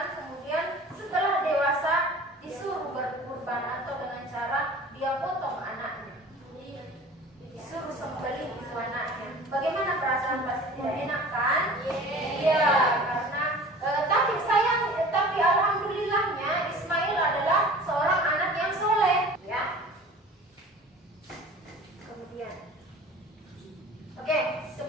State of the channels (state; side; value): normal; both; correlation 0.42